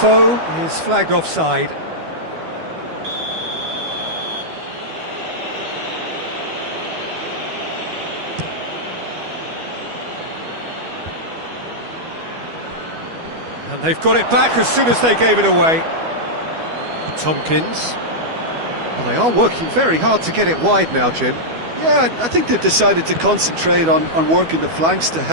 is flagged offside. And they've got it back as soon as they gave it away. Tompkins. Well, they are working very hard to get it wide now, Jim. Yeah, I think they've decided to concentrate on working the flanks to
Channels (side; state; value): left; late; 12 ms